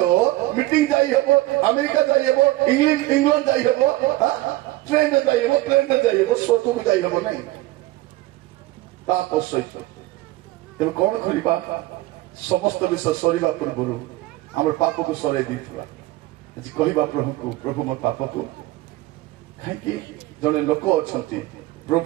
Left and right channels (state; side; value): quieter; left; 17.7 dB